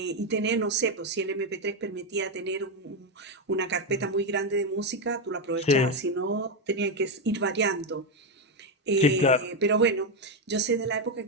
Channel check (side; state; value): both; normal; correlation 0.07